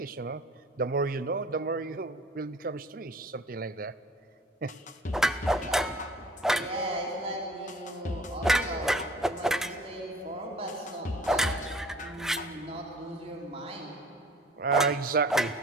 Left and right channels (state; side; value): normal; both; correlation 0.50